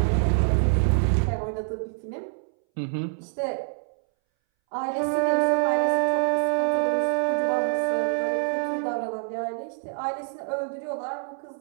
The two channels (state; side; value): silent; left; 61 dB below the other